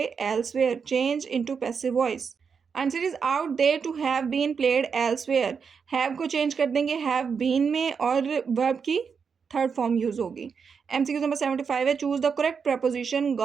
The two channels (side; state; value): left; quieter; 6.1 dB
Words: elsewhere change into passive voice. Answer is out there to have been played elsewhere. have को change कर देंगे have been में और verb की third form use होगी. MCQ number 75 है choose the correct preposition